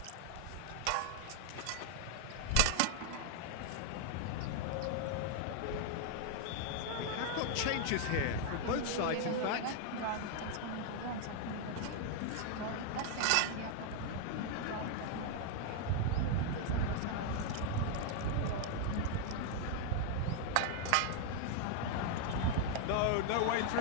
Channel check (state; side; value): different; both; correlation 0.00